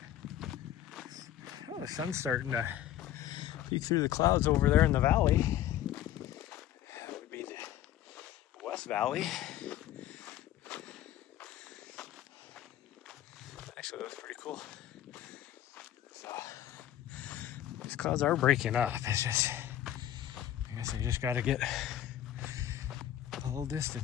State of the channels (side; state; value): right; quieter; 12.0 dB